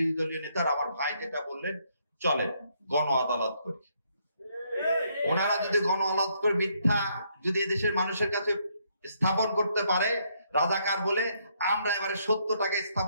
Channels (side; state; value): both; inverted; correlation -0.72